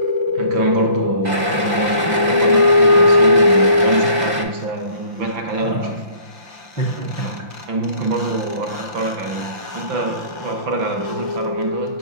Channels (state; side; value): late; left; 5.8 ms